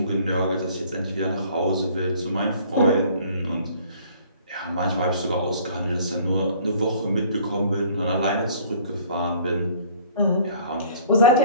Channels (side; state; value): both; inverted; correlation -0.53